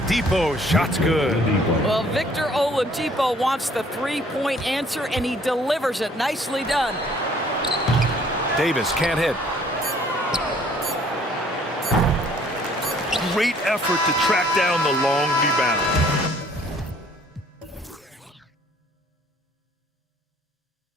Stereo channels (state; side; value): normal; both; correlation 0.59